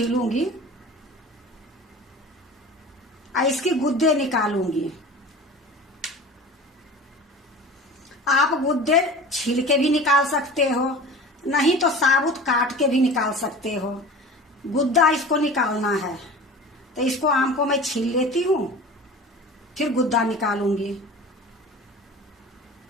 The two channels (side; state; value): both; normal; correlation 0.37